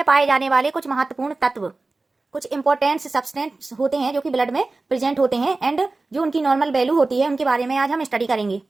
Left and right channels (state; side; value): quieter; left; 3.4 dB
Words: पाए जाने वाले कुछ महत्वपूर्ण तत्व, कुछ इंपॉर्टेंट सब्सटेंस होते हैं जो कि ब्लड में प्रेजेंट होते हैं एंड जो उनकी नॉर्मल वैल्यू होती है, उनके बारे में आज हम स्टडी करेंगे।